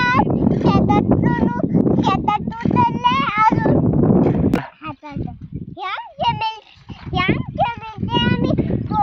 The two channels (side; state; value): both; identical; correlation 1.00